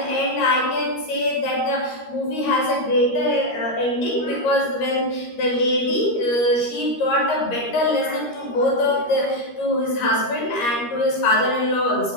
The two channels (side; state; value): right; late; 13 ms